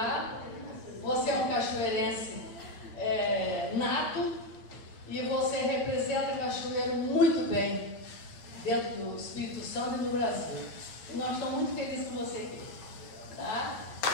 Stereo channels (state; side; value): late; right; 8.9 ms